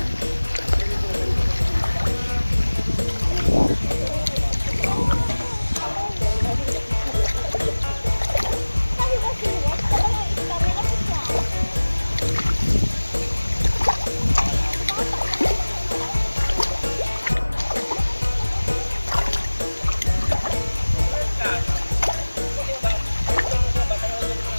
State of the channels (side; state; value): both; inverted; correlation -1.00